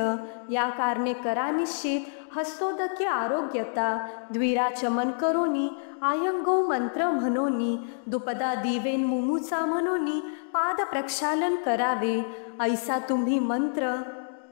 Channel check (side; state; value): right; silent; digital silence